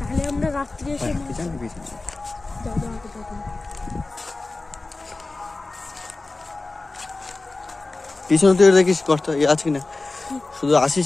আমরা রাত্রে এসে যাবো আগে যাবো। পিছনে তুই দেখিস গর্ত আছে কিনা, শুধু আসিস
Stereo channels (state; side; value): quieter; right; 3.3 dB